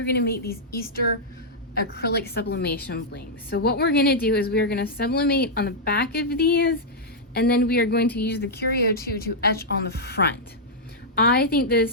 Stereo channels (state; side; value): normal; both; correlation -0.07